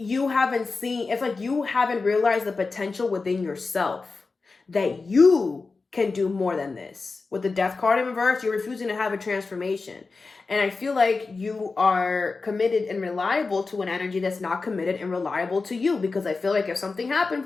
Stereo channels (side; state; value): right; quieter; 4.1 dB